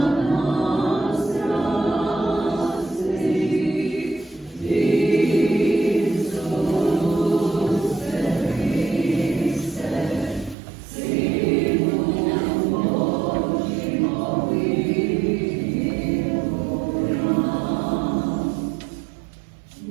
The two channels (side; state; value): left; drops out; at 10.6 s